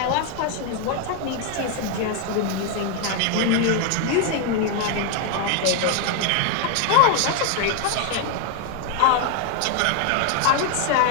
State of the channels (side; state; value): both; different; correlation 0.01